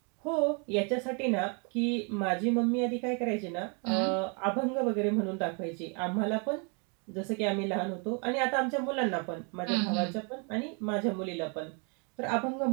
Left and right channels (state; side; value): quieter; left; 35.9 dB